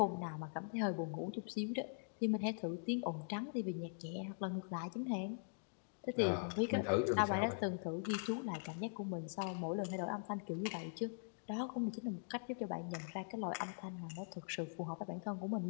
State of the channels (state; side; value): silent; right; digital silence